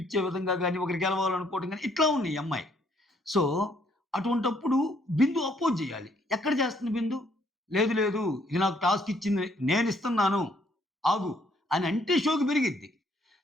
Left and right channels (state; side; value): normal; both; correlation 0.67